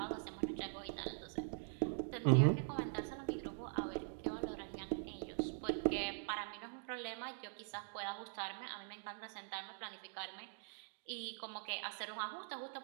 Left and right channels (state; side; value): silent; left; digital silence